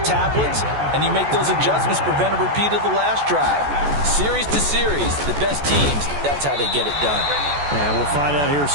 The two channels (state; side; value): late; left; 14 ms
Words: tablets, and you make those adjustments, prevent a repeat of the last drive. Series to series, the best teams, that's how they get it done. And we'll find out here